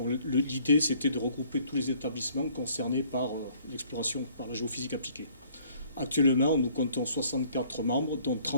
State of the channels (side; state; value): both; inverted; correlation -0.59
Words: l'idée, c'était de regrouper tous les établissements concernés par l'exploration, par la géophysique appliquée. Actuellement, nous comptons 64 membres, dont